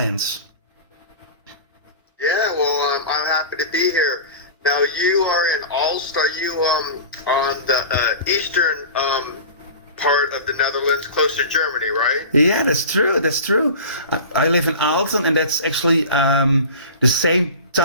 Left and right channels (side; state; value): both; inverted; correlation -0.34